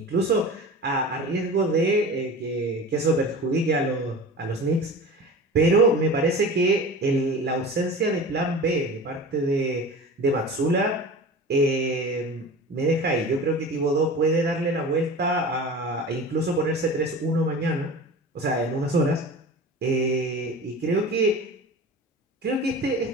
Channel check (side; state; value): both; normal; correlation 0.35